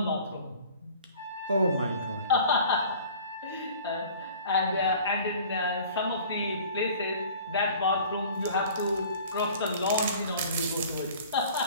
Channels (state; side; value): inverted; both; correlation -0.47